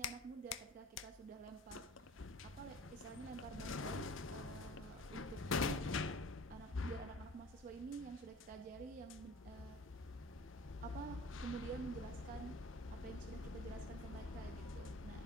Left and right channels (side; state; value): both; normal; correlation 0.45